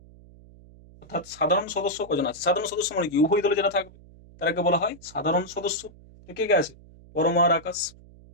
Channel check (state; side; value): noise; right; hum, 23 dB below the sound